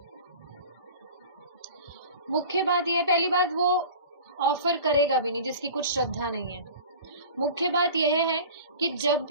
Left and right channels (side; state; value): both; inverted; correlation -0.39